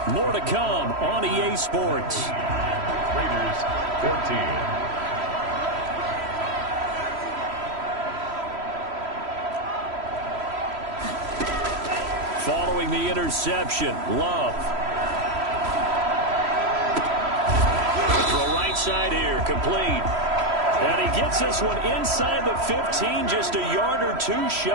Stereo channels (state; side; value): late; left; 3.1 ms